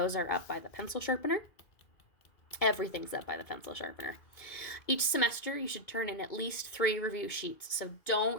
are up by the pencil sharpener. Everything's up by the pencil sharpener. Each semester, you should turn in at least 3 review sheets. So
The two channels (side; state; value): right; late; 2.2 ms